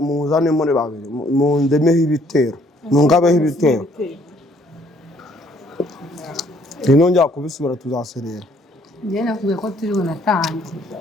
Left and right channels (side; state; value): both; normal; correlation 0.64